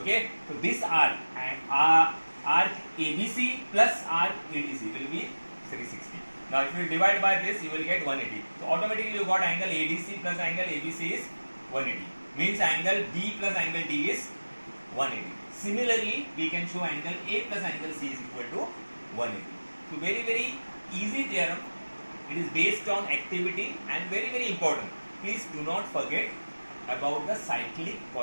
So this arc and arc ABC plus arc ADC will be 360. Now if you divide by this, you will get 180. So automatically you got angle ADC plus angle ABC is 180. Means angle B plus angle D is 180. Similarly, we can show angle A plus angle C is equal to 180. So very easy theorem. It is based on activity and very important. Please do not forget about the cyclic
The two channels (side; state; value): both; inverted; correlation -1.00